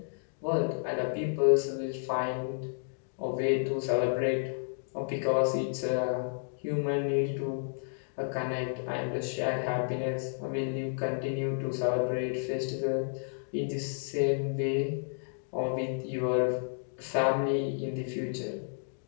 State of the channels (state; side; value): silent; right; digital silence